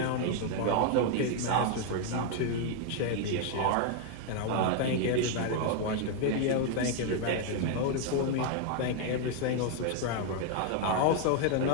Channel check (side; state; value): both; different; correlation 0.00